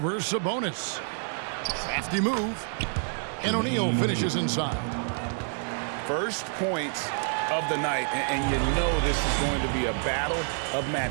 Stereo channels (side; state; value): left; silent; 59 dB below the other